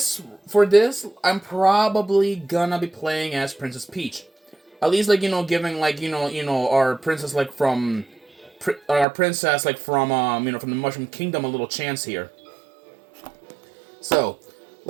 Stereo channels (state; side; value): drops out; left; at 9.1 s